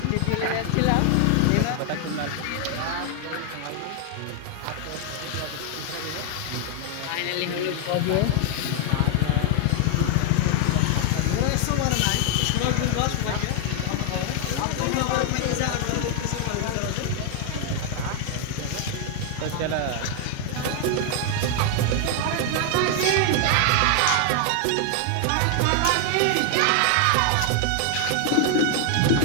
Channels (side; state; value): both; different; correlation 0.00